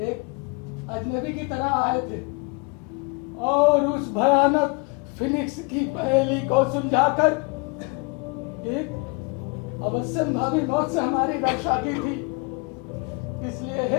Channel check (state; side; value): quieter; right; 30.9 dB